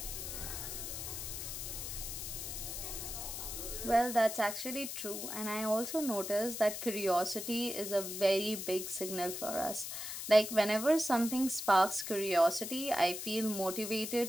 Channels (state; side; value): noise; left; hiss, 6 dB below the sound